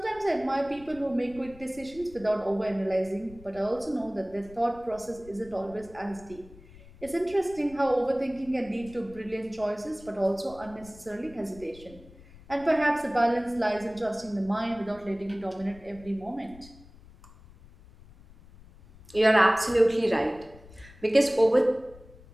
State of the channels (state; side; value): noise; left; rumble, 21 dB below the sound